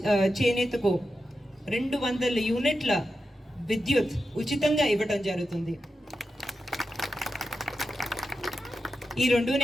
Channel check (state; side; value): normal; both; correlation 0.90